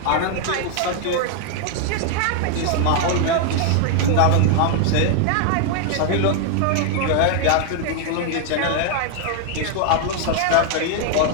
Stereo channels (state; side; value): different; both; correlation 0.00